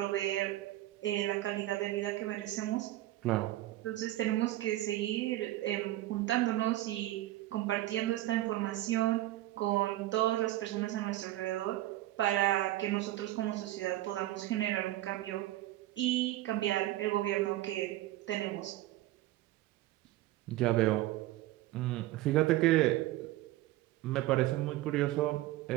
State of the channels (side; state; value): left; quieter; 15.7 dB